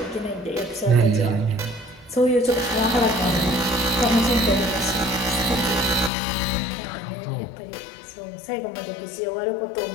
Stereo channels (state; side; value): drops out; right; at 6.1 s